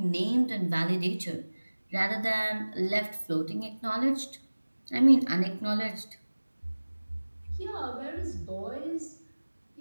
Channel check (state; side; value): inverted; both; correlation -1.00